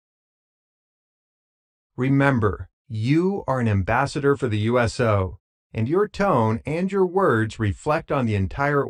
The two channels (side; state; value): both; identical; correlation 1.00